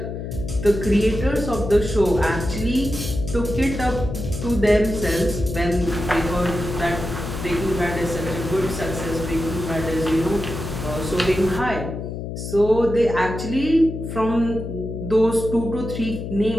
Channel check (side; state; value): left; noise; hum, 7 dB below the sound